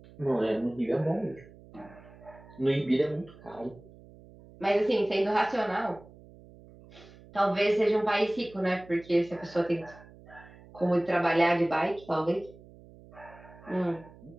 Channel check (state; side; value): noise; right; hum, 22 dB below the sound